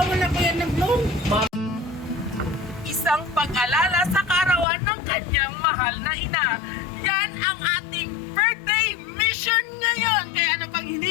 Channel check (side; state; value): right; drops out; at 4.7 s